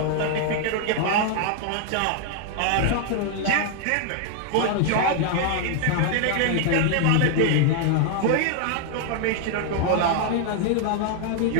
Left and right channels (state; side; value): different; both; correlation 0.00